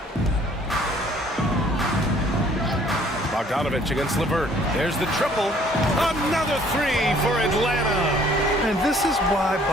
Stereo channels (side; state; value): both; normal; correlation 0.59